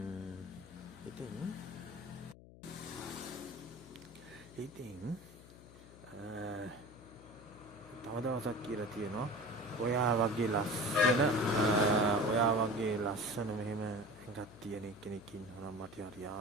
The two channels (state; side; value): noise; left; hum, 19 dB below the sound